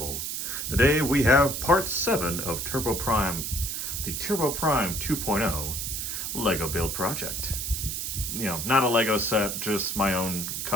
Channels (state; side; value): noise; right; hiss, 3 dB below the sound